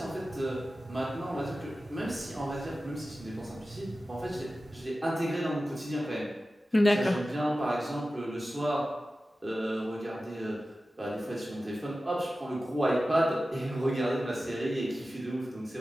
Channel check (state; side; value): normal; both; correlation 0.94